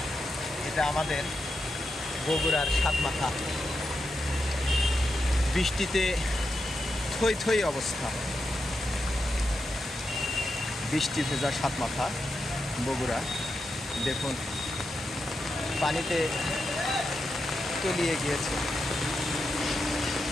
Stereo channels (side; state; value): both; normal; correlation 0.87